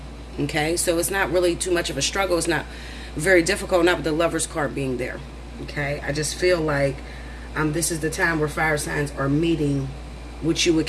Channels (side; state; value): both; identical; correlation 1.00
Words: Okay, so it's not really too much of a struggle. It's not very difficult, not with the Lover's card being there. Okay, I just feel like this is the time where fire signs are meeting what you would